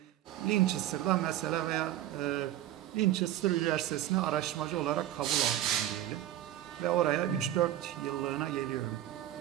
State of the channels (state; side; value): quieter; left; 13.1 dB